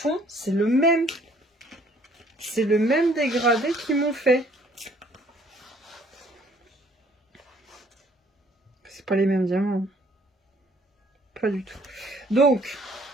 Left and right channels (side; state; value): both; normal; correlation 0.61